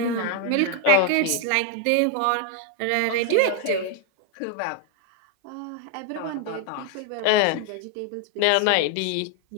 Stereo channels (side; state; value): both; different; correlation 0.00